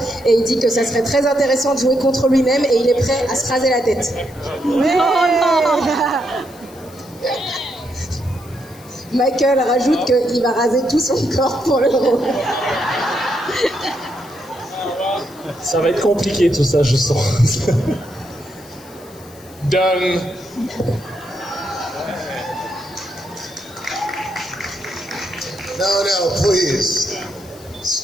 et il dit que ça serait très intéressant de jouer contre lui-même et il est prêt à se raser la tête. Michael rajoute qu'il va raser tout son corps pour le rôle. Ça va être compliqué tout ça, je sens. Done. No, please.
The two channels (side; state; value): left; noise; hiss, 23 dB below the sound